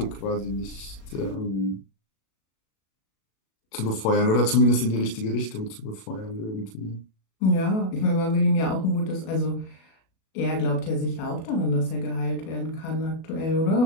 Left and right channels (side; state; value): right; late; 37 ms